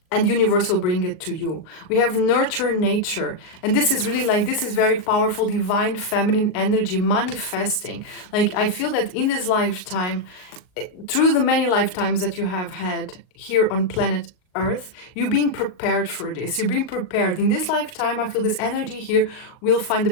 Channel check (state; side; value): late; right; 38 ms